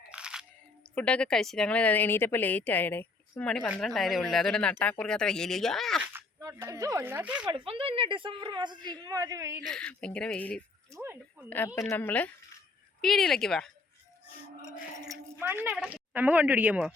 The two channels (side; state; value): right; quieter; 3.7 dB